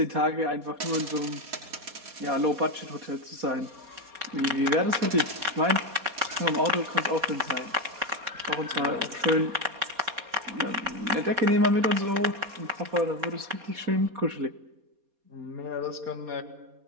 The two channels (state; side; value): late; left; 4.2 ms